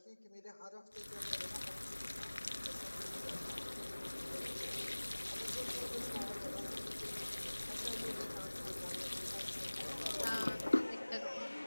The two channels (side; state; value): both; inverted; correlation -1.00